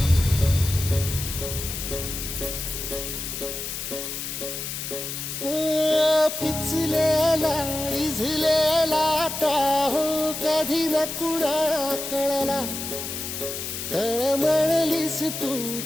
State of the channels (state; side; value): noise; left; hiss, 6 dB below the sound